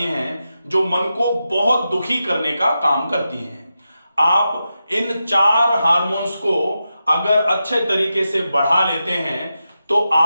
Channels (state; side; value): inverted; both; correlation -0.90